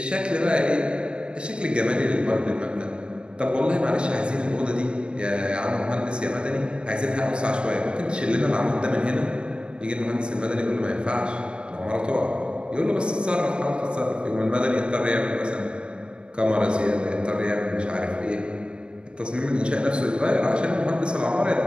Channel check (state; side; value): late; left; 0.056 ms